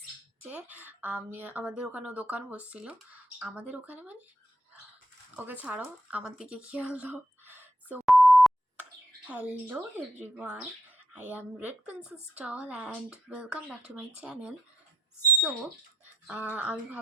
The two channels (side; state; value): both; normal; correlation 0.78